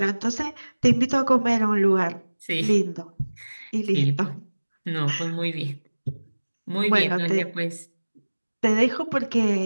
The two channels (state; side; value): inverted; both; correlation -1.00